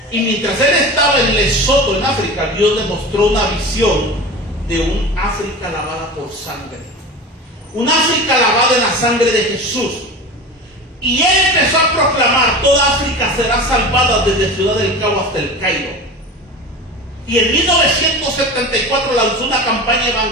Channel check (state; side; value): normal; both; correlation 0.32